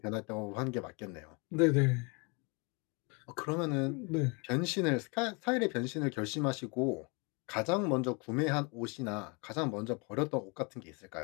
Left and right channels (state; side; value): quieter; right; 31.5 dB